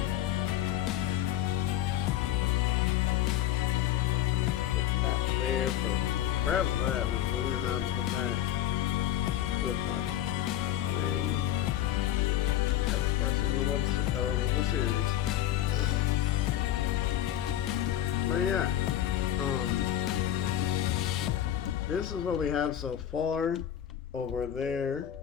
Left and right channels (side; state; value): right; quieter; 11.9 dB